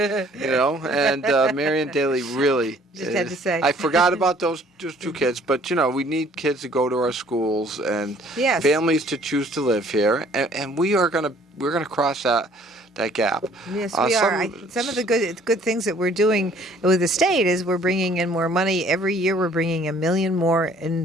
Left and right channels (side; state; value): both; normal; correlation 0.57